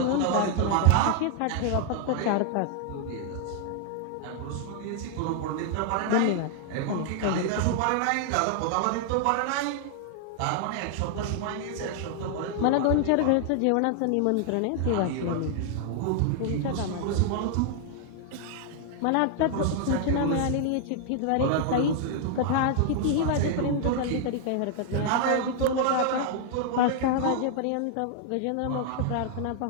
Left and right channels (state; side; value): different; both; correlation 0.00